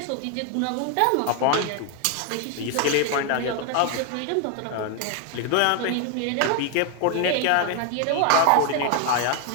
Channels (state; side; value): different; both; correlation 0.01